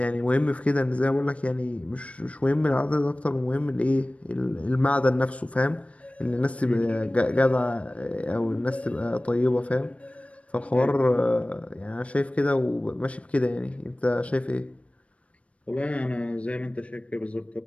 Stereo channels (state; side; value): late; right; 0.063 ms